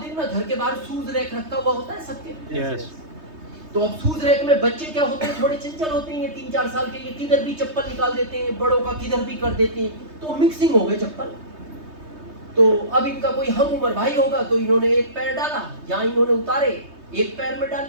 देखना घर के बाहर शूज रैक रखा हुआ होता है सबके। Yes. तो अब शूज रैक में बच्चे क्या होते हैं, थोड़े चंचल होते हैं, 3-4 साल के, ये किधर भी चप्पल निकाल देते हैं, बड़ों का किधर भी कर देते हैं। तो मिक्सिंग हो गई चप्पल। तो अब इनका कोई हम उम्र भाई होगा, तो इन्होंने एक पैर डाला, जहां इन्होंने उतारे एक पैर में डाल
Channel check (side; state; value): left; late; 3.2 ms